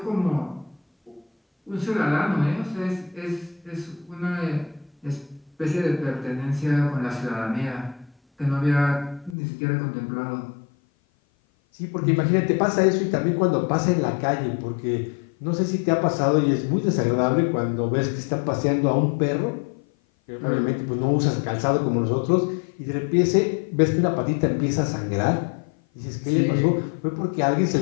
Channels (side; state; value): right; drops out; at 9.3 s